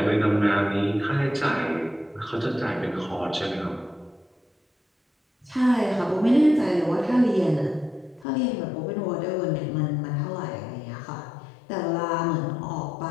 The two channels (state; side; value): drops out; right; at 8.2 s